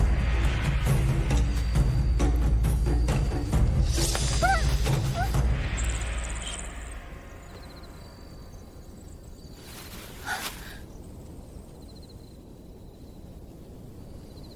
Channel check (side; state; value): both; identical; correlation 1.00